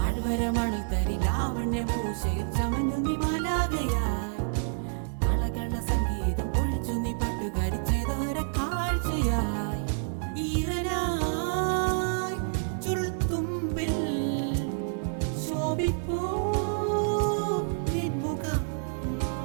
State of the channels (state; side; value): silent; left; 59 dB below the other